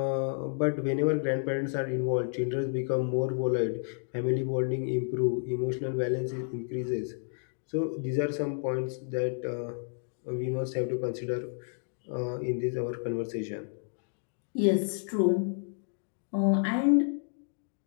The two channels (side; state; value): right; silent; digital silence